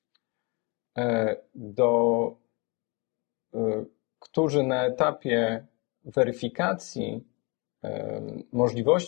którzy na etapie weryfikacji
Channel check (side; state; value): right; quieter; 29.3 dB